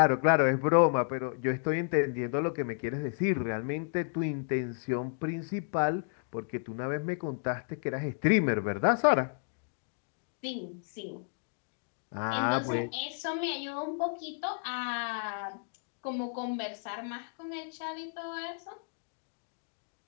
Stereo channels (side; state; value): right; silent; digital silence